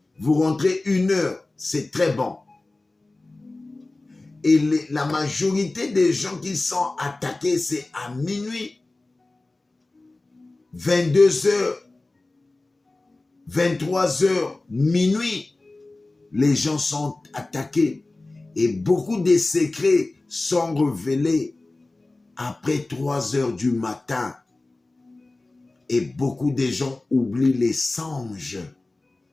vous rentrez 1h, c'est très bon. Et la majorité des gens qui sont attaqués, c'est à minuit, 22h, 23h, minuit, les gens sont attaqués. Et beaucoup de secrets sont révélés après 3h du matin. Et beaucoup de gens oublient les songes.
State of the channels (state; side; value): quieter; right; 3.1 dB